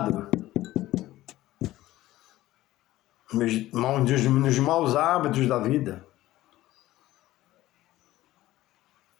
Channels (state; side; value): quieter; right; 15.9 dB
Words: nos maus hábitos da vida.